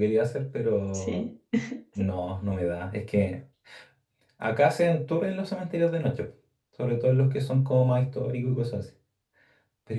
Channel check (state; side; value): identical; both; correlation 1.00